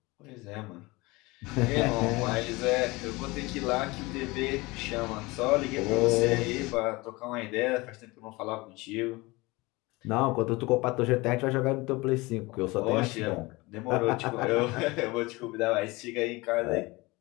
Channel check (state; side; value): quieter; right; 22.9 dB